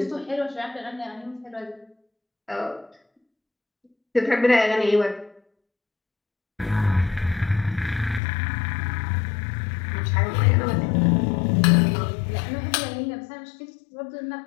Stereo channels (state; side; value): drops out; right; at 8.2 s